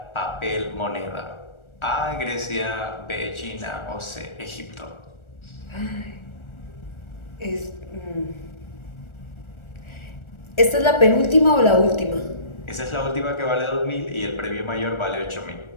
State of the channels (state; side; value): late; right; 1.4 ms